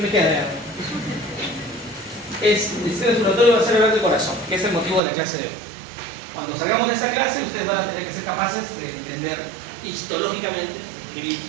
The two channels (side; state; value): left; drops out; at 5.0 s